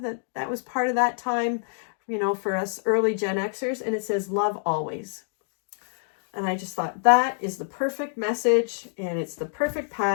that was part of that time, you know, for us early Gen Xers, and it says, love always. And I just thought that is the perfect message, and it's the perfect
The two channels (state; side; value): silent; right; digital silence